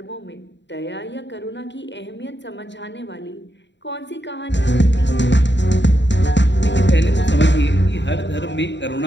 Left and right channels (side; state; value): right; late; 0.52 ms